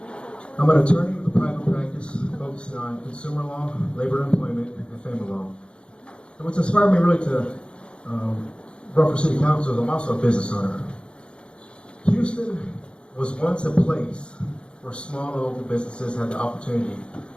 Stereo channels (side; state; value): right; late; 0.056 ms